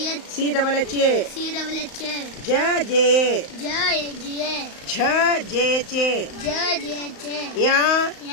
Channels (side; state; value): right; late; 35 ms